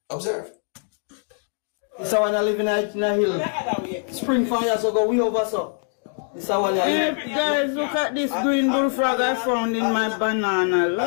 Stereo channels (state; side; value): silent; right; 57 dB below the other